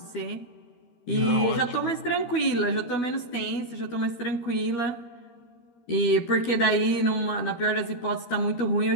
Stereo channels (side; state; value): right; late; 12 ms